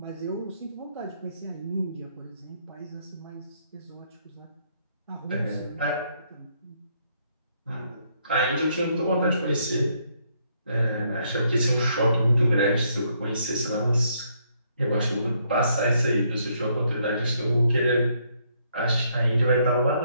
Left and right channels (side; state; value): both; inverted; correlation -0.72